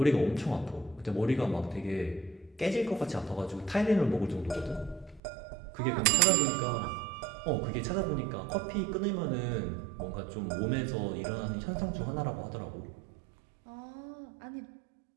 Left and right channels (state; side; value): drops out; left; at 5.2 s